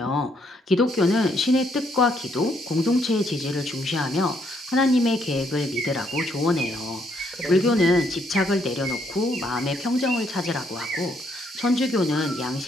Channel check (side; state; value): both; normal; correlation 0.72